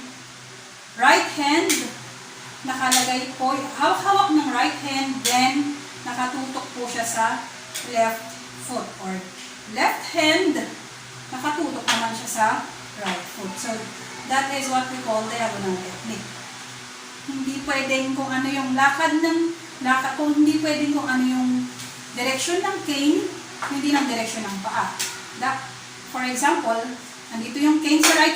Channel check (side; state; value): both; identical; correlation 1.00